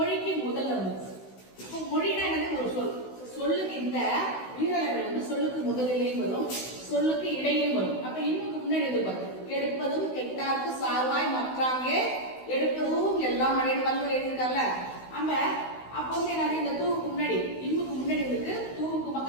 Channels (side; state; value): right; late; 16 ms